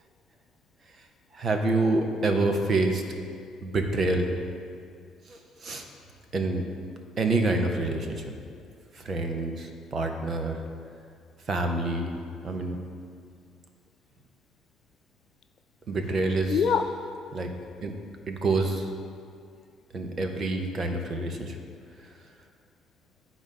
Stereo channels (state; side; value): normal; both; correlation 0.68